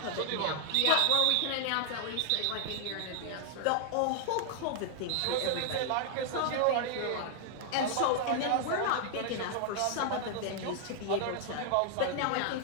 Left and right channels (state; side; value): different; both; correlation 0.00